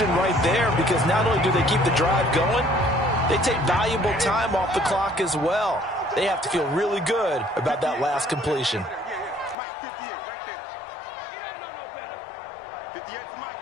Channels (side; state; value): right; drops out; at 9.6 s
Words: right there because not only do they keep the drive going, they take valuable time off the clock as well. They have to feel really good about that last completion. Mike, 58, right there. You don't know no better. 58 for Mike,